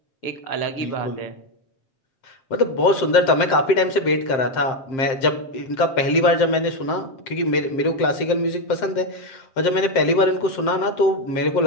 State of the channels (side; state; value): right; late; 7.6 ms